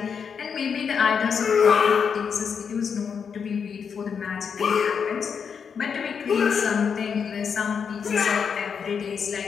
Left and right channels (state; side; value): quieter; right; 6.6 dB